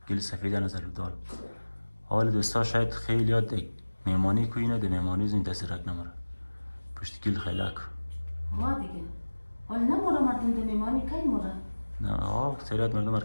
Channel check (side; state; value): both; inverted; correlation -1.00